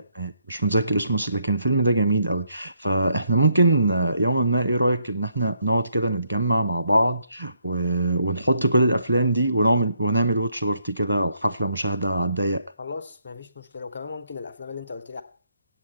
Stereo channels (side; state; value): both; inverted; correlation -0.73